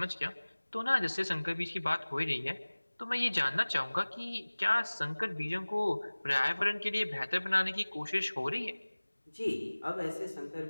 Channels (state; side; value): inverted; both; correlation -1.00